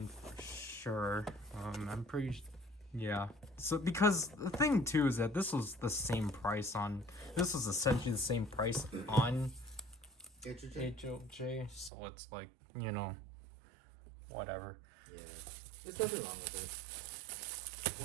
for sure. I'm pretty yeah. So because the thing too is that this was the same price on this was essentially the same price on HLJ, so it's like, you know, whatever. Yeah. There's nothing wrong with it.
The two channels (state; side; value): drops out; left; at 11.9 s